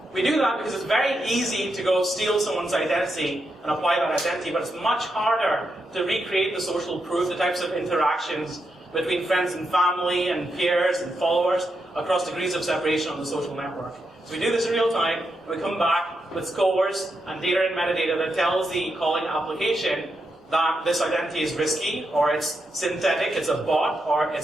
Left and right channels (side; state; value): both; normal; correlation 0.84